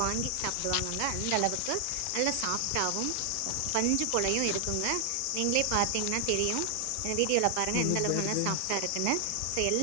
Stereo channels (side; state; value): both; different; correlation 0.00